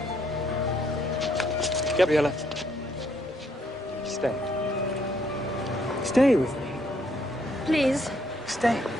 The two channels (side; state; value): both; normal; correlation 0.70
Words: Gabriella, stay. Stay with me. Please. Stay.